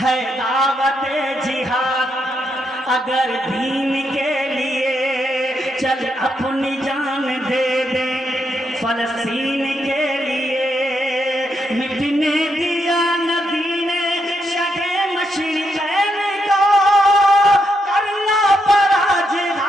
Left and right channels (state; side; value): normal; both; correlation 0.81